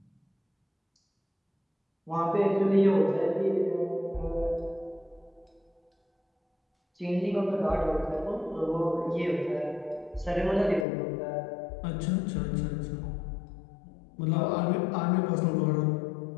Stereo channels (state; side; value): drops out; right; at 10.9 s